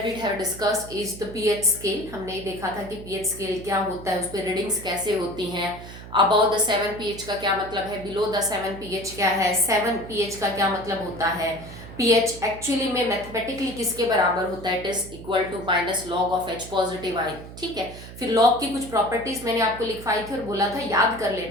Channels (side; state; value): right; noise; hum, 14 dB below the sound